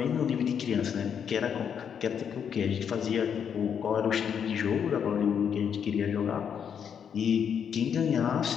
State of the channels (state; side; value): quieter; right; 7.8 dB